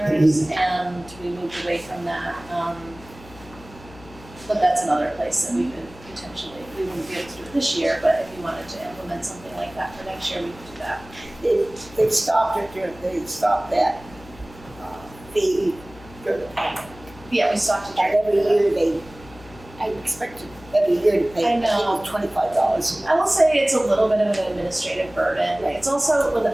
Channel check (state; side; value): noise; left; hum, 20 dB below the sound